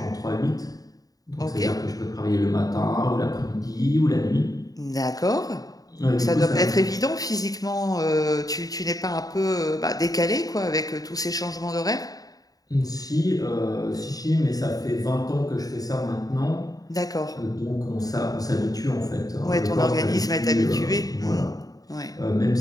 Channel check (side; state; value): right; late; 0.18 ms